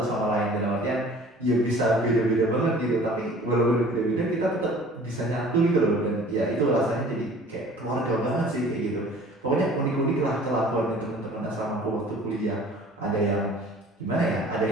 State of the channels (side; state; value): both; normal; correlation 0.48